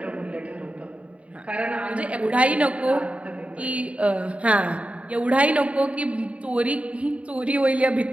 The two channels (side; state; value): left; late; 0.064 ms